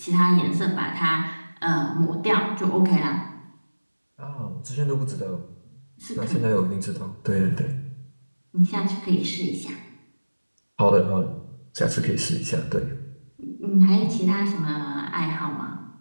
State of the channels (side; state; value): both; inverted; correlation -1.00